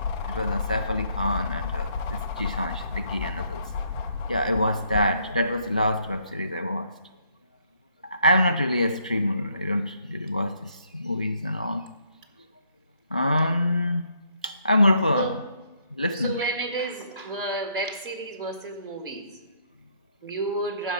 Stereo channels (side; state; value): both; inverted; correlation -0.70